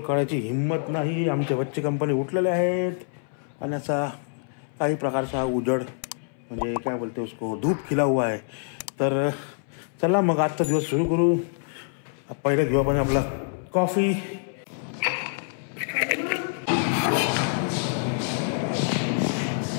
हिंमत नाही. आमचे बच्चे कंपनी उठलेले आहेत आणि असा काही प्रकारचा उजड म्हणजे काय बोलते उसको धूप खिला हुआ आहे. तर चला मग आजचा दिवस सुरू करू. पहिलं घेऊ आपण आपला कॉफी.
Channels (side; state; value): right; silent; 61 dB below the other